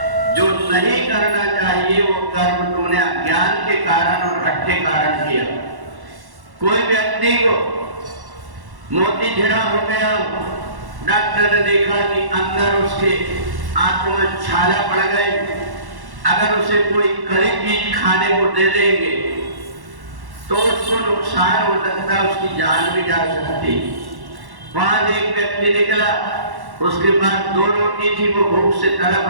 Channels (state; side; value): late; left; 1.1 ms